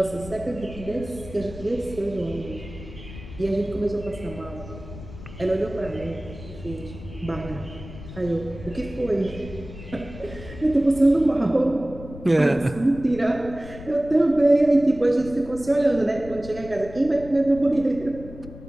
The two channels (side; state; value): left; noise; rumble, 14 dB below the sound